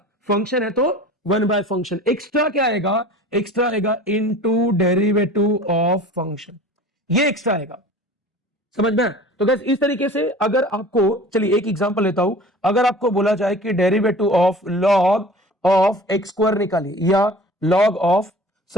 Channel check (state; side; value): normal; both; correlation 0.41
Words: फंक्शन है तो 1/फंक्शन। एक्स्ट्रा क्या आएगा? एक्स्ट्रा आएगा इनटू डेरिवेटिव ऑफ फंक्शन, ये एक्स्ट्रा आएगा। समझ में? तो गाइस इस तरीके से अगर आपको, चलिए एक एग्जांपल लेता हूं, अगर आपको बोला जाए कि derivative of log of x square निकालिए, या log ऑफ